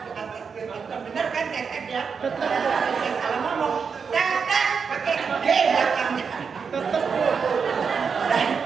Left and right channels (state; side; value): quieter; left; 5.9 dB